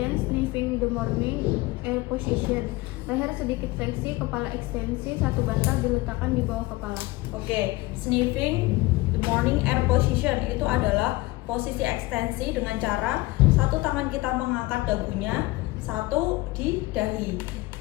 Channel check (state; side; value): quieter; right; 20.7 dB